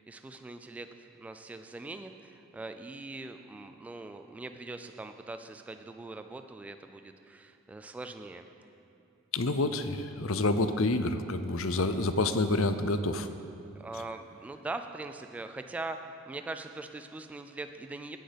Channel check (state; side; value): normal; both; correlation 0.33